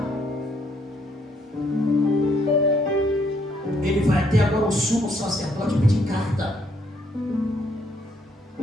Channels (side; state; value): both; normal; correlation 0.70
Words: O sumo sacerdote pedir carta